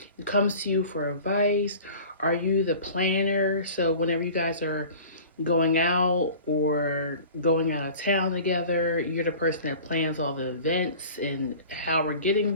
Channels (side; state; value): both; inverted; correlation -0.42